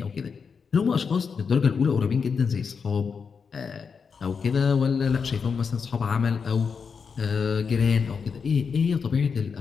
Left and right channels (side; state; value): right; quieter; 5.8 dB